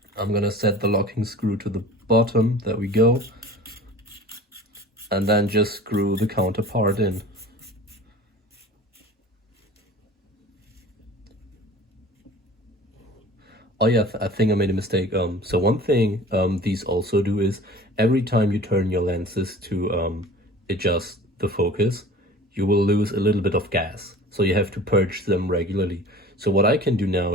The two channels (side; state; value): both; normal; correlation 0.43